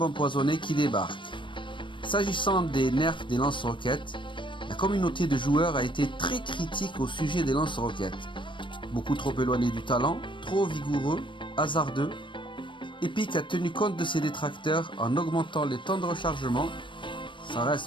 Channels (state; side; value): late; right; 0.24 ms